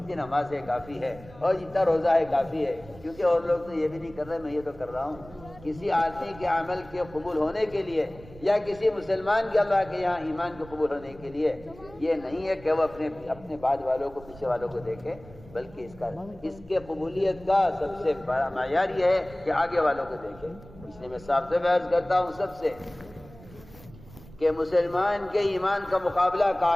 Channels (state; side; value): noise; right; rumble, 20 dB below the sound